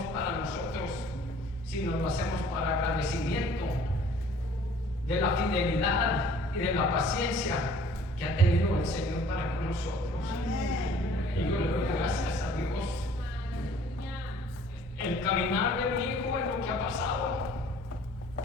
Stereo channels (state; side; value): normal; both; correlation 0.53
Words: para nosotros, sino lo hacemos para agradecimiento de la fidelidad y de la paciencia que ha tenido el Señor para con nosotros. Y yo le doy gracias a Dios. El caminar de mi hijo es lo que ha pasado.